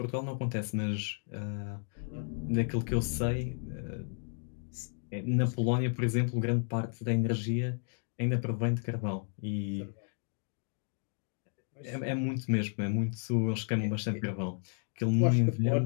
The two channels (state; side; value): silent; right; 56 dB below the other